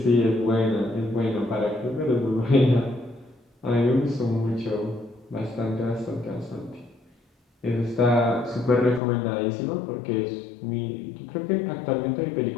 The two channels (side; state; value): right; drops out; at 9.0 s